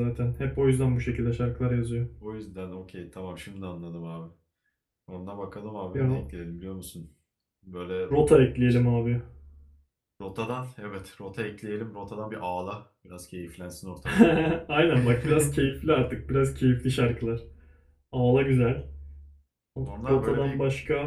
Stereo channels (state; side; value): identical; both; correlation 1.00